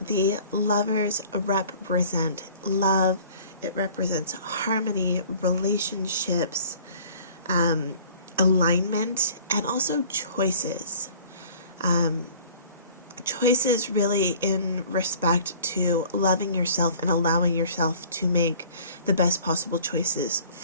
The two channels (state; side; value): inverted; both; correlation -0.49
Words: Lovers represent love. It represents harmony, relationships, alignment, and also choices. Choices really in respect to loving yourself and allowing yourself to make the best possible choices